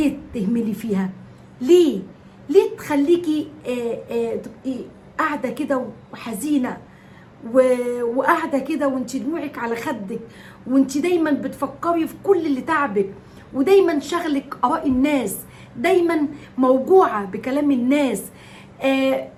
تهملي فيها؟ ليه تخليكي تبقي قاعدة كده وحزينة وقاعدة كده وانت دموعك على خدك، وانت دايما بتفكري في كل اللي تعبك، ودايما شغلك آراء الناس، دايما موجوعة بكلام الناس.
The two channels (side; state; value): both; identical; correlation 1.00